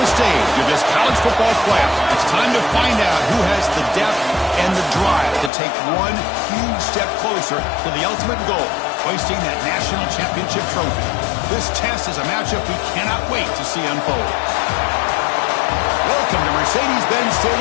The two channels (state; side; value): drops out; right; at 5.5 s